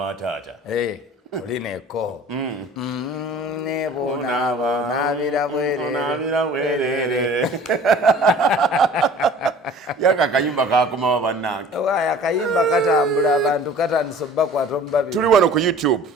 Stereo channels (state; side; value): normal; both; correlation 0.47